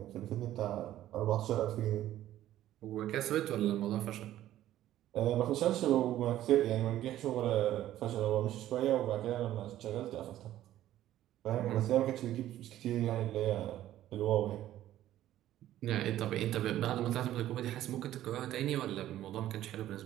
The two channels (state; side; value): quieter; left; 13.2 dB